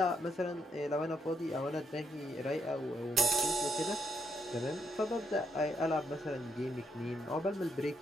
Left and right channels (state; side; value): normal; both; correlation 0.77